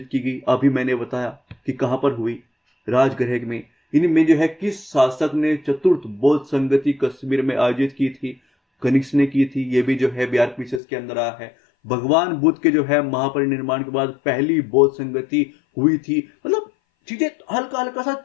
की गई? अभी मैंने बताया कि कहां पर हुई, राजगृह में। इनमें जो है किस शासक ने चतुर्थ बौद्ध संगति कश्मीर में आयोजित की थी? कनिष्क ने की थी। ये भी जो है बिहार पीसीएस के अंदर आया है। भगवान बुद्ध के जो है महापरिनिर्वाण के बाद पहली बौद्ध संगति हुई थी। मतलब चीजें हल्का हल्का सा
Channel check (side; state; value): right; drops out; at 10.8 s